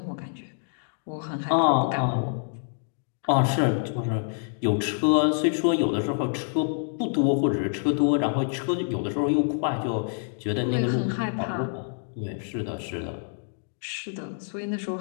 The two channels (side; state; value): right; silent; digital silence